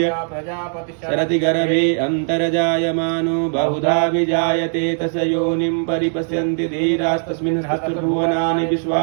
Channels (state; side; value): silent; left; 65 dB below the other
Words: शरति गर्भे अन्तर्जायमानो बहुधा विजायते तस्य योनिं परिपश्यन्ति धीरास्तस्मिन् सहस्रभुवनानि